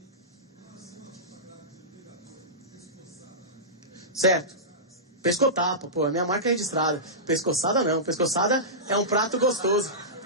Certo. Pescotapa, pô, a minha marca é registrada. Pescoçada não, pescoçada é um prato gostoso.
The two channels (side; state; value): both; normal; correlation -0.17